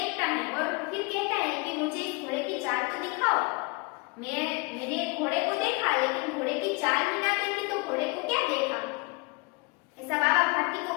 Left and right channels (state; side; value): quieter; right; 29.8 dB